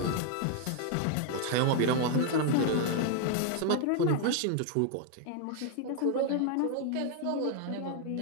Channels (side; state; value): both; different; correlation 0.00